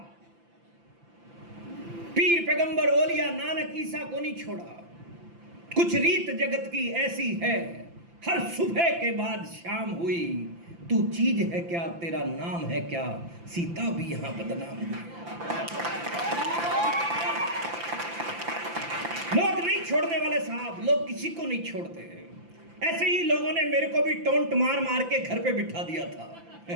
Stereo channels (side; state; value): left; late; 5.9 ms